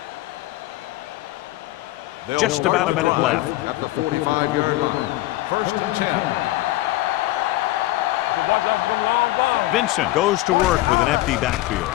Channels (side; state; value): right; quieter; 17.4 dB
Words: Just about a minute left. At the 45-yard line. First and 10. Vincent goes to work with an empty backfield.